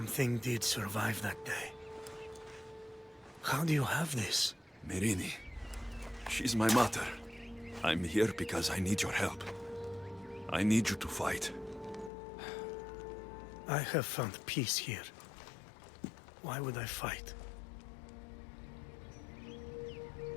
did survive that day. How do you have this? Myrrine. She's my mother. I'm here because I need your help. I need you to fight. I have found peace here. Why would I fight?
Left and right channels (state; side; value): drops out; right; at 12.1 s